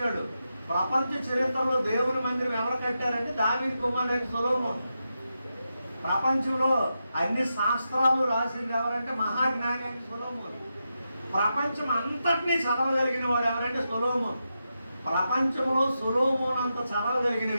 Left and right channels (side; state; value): both; inverted; correlation -0.87